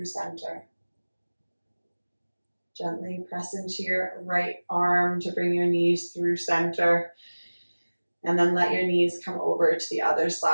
center. Gently press into your right arm to bring your knees through center. And then let your knees come over to the other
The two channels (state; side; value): inverted; both; correlation -1.00